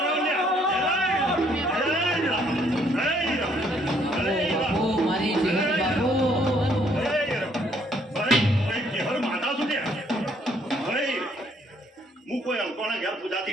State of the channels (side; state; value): both; normal; correlation 0.66